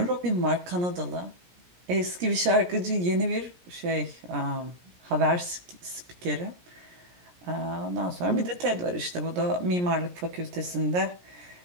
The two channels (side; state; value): left; late; 17 ms